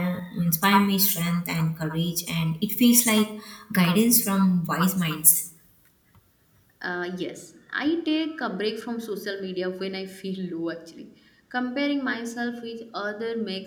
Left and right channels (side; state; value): both; identical; correlation 1.00